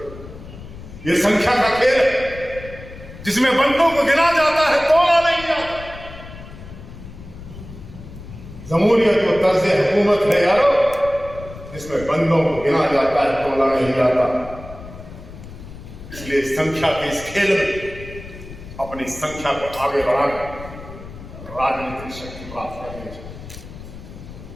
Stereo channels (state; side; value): noise; left; rumble, 15 dB below the sound